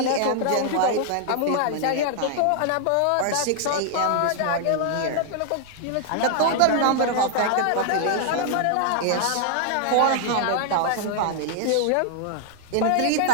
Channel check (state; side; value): different; both; correlation 0.00